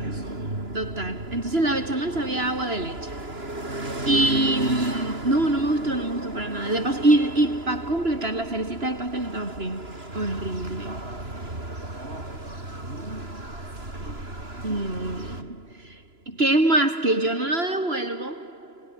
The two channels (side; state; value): left; late; 3.0 ms